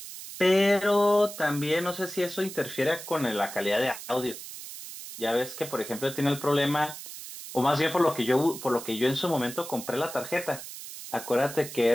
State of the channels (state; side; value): noise; right; hiss, 12 dB below the sound